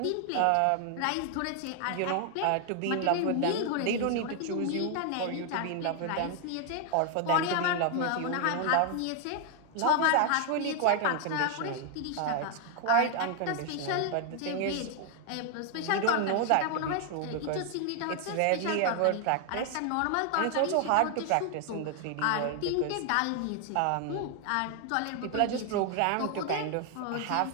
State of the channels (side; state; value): both; different; correlation 0.00